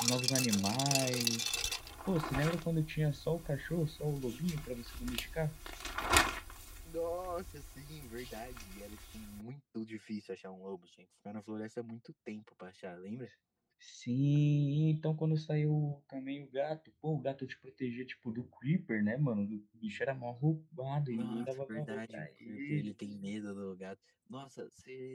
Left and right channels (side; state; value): both; identical; correlation 1.00